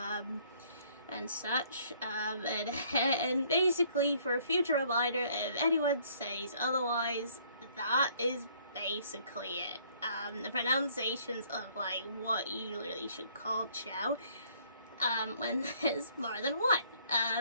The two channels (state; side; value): inverted; both; correlation -0.62